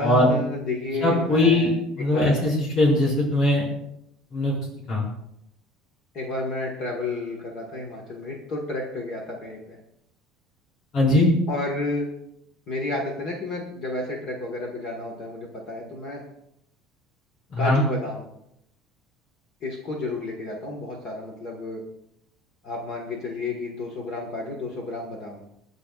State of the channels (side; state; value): both; normal; correlation 0.47